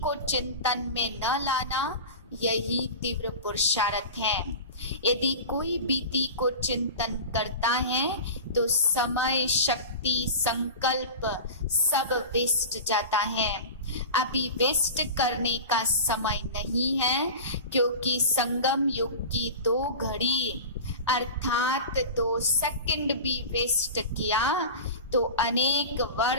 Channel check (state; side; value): inverted; both; correlation -0.31